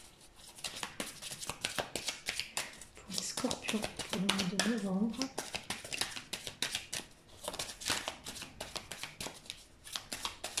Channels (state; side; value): identical; both; correlation 1.00